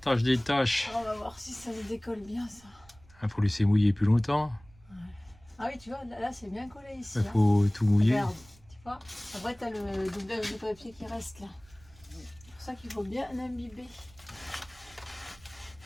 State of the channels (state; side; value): noise; right; rumble, 26 dB below the sound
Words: des tâches. On va voir si ça se décolle bien ça. Il faut laisser mouiller plus longtemps. Ah oui, tu vois, là c'est bien collé ici. Il faut tout mouiller. Regarde, tu vois. Après, tu as le doublage de papier qui reste là. C'est pour ça qu'il faut bien imbiber.